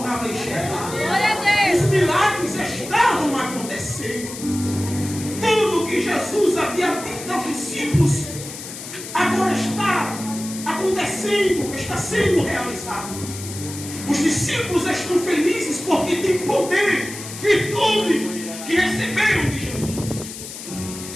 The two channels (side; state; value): left; noise; hiss, 11 dB below the sound